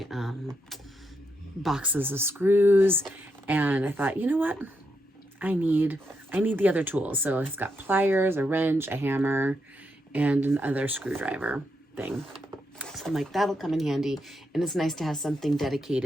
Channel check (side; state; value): both; normal; correlation 0.81